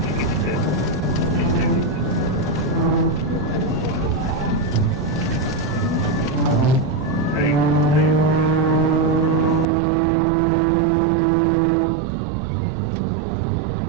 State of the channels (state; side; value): drops out; left; at 9.7 s